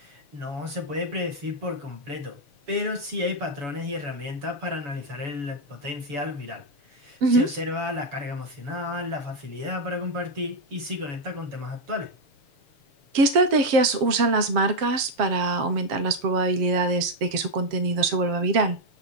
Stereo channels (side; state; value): left; late; 7.4 ms